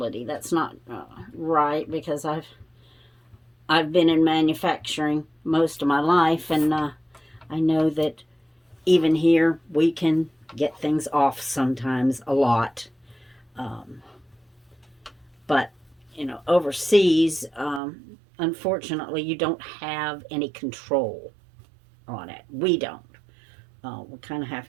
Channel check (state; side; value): drops out; left; at 17.8 s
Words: That's not right, because I've been in manufacturing most of my life, and I know that even here we can get things off sometimes a lot. But overseas, unfortunately, you don't have any control on it. We don't. We kind of